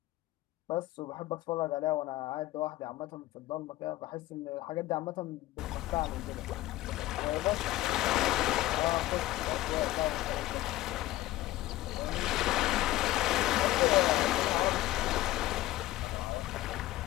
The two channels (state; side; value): quieter; right; 16.6 dB